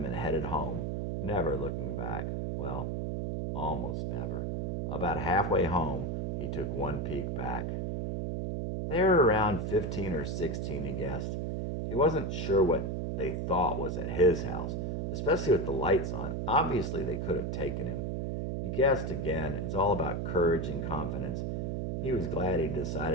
and headed home, never looking back. Well, almost never. About halfway home, he took one peek back. They were around 15 or 16, he guessed. He wasn't sure what they thought was at his house, especially with the lights on. Obviously, they could have taken him. He guessed again. It's all about courage and confidence. He was glad he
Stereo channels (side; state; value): right; noise; hum, 1 dB below the sound